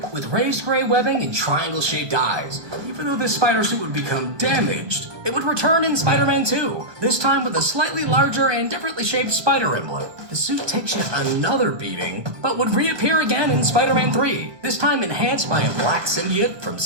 with raised gray webbing and triangle-shaped eyes. Even though this spider suit would become damaged, it would return in Spider-Man 2, this time with a slightly larger and differently shaped spider emblem. The suit takes yet another beating, but would reappear again in Spider-Man 3, this time enhanced by a black symbiote from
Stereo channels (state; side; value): late; left; 1.2 ms